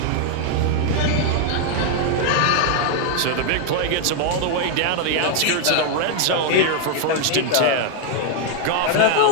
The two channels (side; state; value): both; different; correlation 0.00